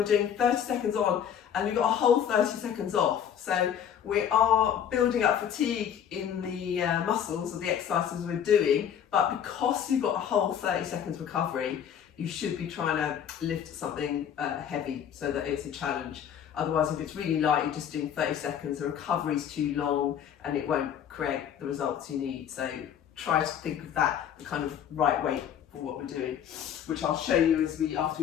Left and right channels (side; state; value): right; quieter; 9.0 dB